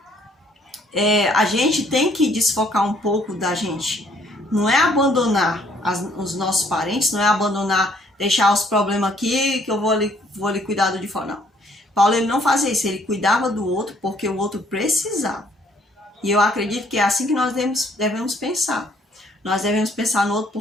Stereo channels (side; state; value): both; normal; correlation 0.64